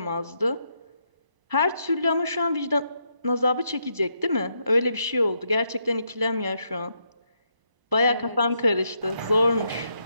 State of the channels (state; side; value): late; left; 1.0 ms